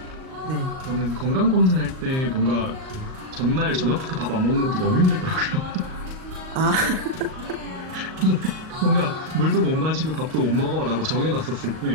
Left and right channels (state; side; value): late; left; 38 ms